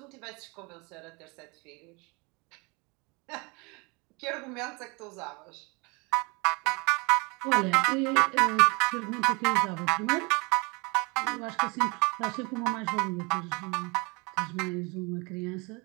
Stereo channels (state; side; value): quieter; left; 28.1 dB